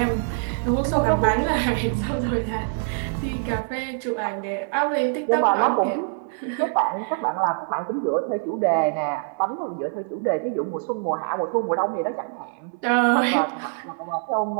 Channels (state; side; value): silent; left; 62 dB below the other